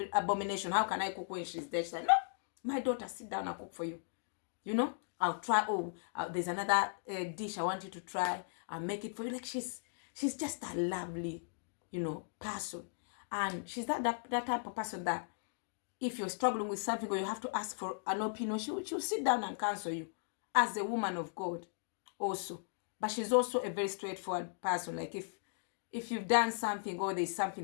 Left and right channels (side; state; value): right; silent; digital silence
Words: abomination. How can I cook when she's there? She's like, no, my daughter, sit down and cook for you. You know, I'll try. Oh, there's another dish I want you to try. I'll make it for you. Like, she's just a lovely, you know, person. And she's that type of person that if you're struggling with something or you have to ask for an opinion, she'll sit down and counsel you as a woman of God also. But she's also a very straightforward person. Like, if you've done something or there's